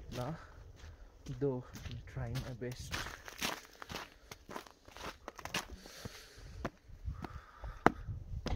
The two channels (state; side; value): identical; both; correlation 1.00